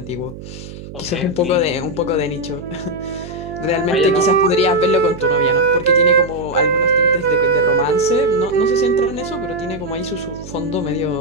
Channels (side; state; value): right; noise; hum, 13 dB below the sound